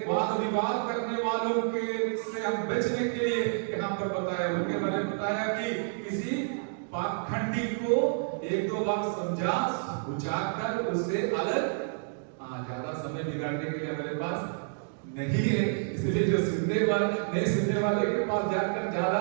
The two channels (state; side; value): silent; left; digital silence